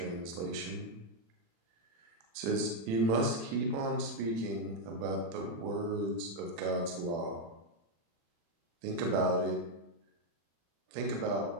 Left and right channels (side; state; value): left; late; 36 ms